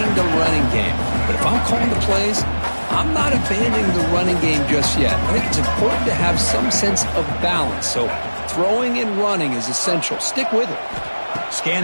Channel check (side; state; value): both; inverted; correlation -1.00